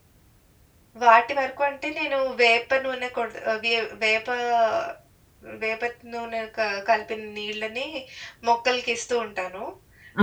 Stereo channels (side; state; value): both; identical; correlation 1.00